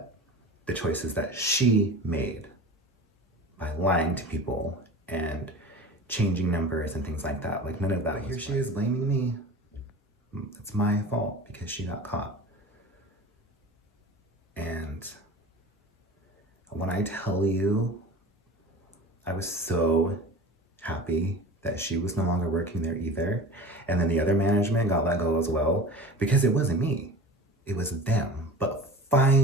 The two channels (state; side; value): normal; both; correlation 0.36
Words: the choices that she made by lying to people and changing numbers and things like that. Like none of that. Here she is blaming me. It's my fault because she got caught. And when I tell you, I was so happy that she was no longer working there either. And then the other management got let go as well because it wasn't me. It was them. But